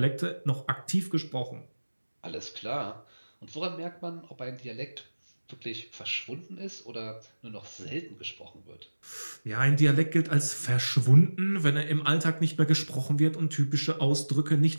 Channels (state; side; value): inverted; both; correlation -1.00